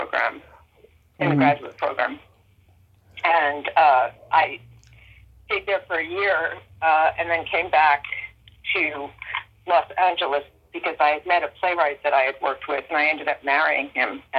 in the graduate program. And I stayed there for a year and then came back to Los Angeles because I had met a playwright that I had worked with, and I ended up marrying him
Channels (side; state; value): both; identical; correlation 1.00